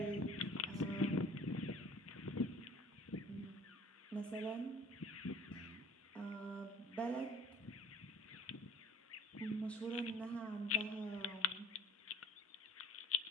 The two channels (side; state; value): both; normal; correlation 0.48